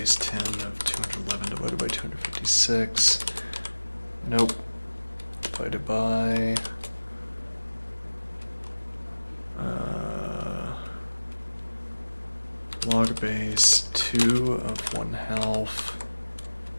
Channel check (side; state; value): both; inverted; correlation -1.00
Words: 10 of 211 divided by 256. Nope. Divided by log base 2 of 1/2